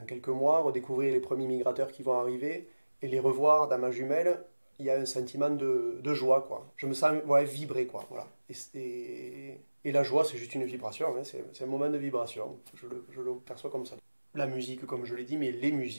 quelques mois, redécouvrir les premiers migrateurs qui vont arriver et les revoir dans ma jumelle, il y a un sentiment de joie, quoi. Je me sens ouais, vibrer, quoi. Voilà. Et la joie, c'est juste une vibration, hein, c'est un moment de vibration. Je le perçois comme ça. La musique, comme je l'ai dit, mais les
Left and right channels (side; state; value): both; inverted; correlation -1.00